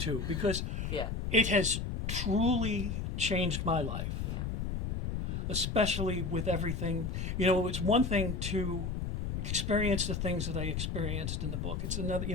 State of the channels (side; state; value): left; noise; rumble, 2 dB below the sound